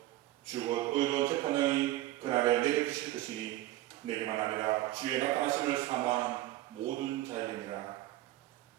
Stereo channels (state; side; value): quieter; left; 15.7 dB